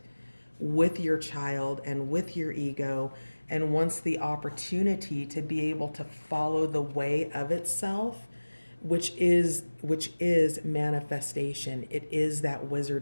with your child and with your ego and wants the opportunity to be able to follow the way of itself, which is manifestation. It is that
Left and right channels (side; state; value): both; inverted; correlation -1.00